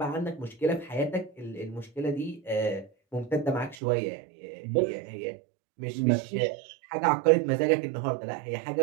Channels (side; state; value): left; drops out; at 3.8 s